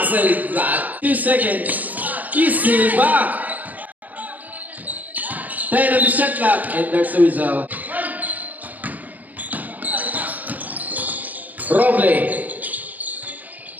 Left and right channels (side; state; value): left; late; 0.080 ms